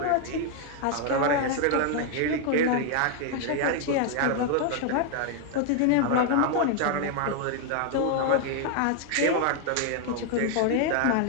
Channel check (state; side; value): different; both; correlation 0.00